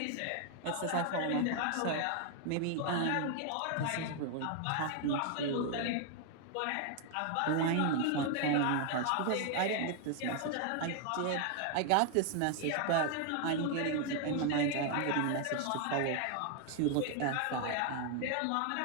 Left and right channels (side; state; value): both; different; correlation 0.00